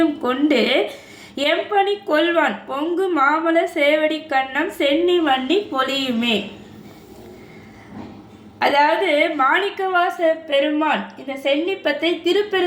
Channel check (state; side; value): identical; both; correlation 1.00